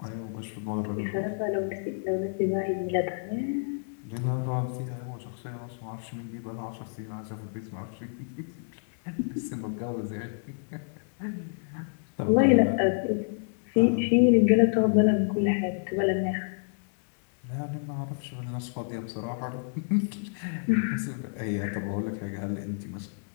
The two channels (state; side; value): silent; right; 58 dB below the other